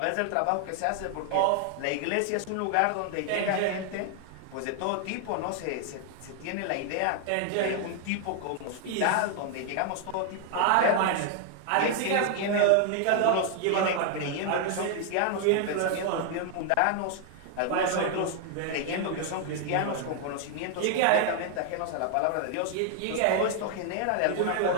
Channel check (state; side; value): different; both; correlation 0.00